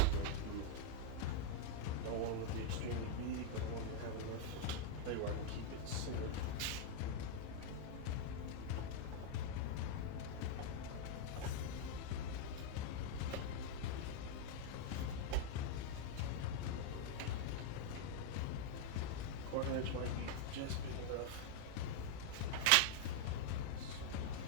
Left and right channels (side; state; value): both; different; correlation 0.00